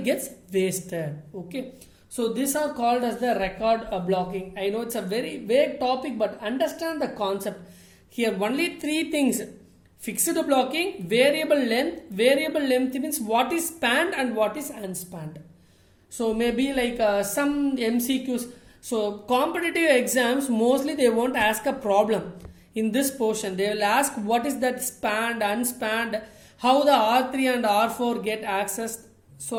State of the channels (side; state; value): both; identical; correlation 1.00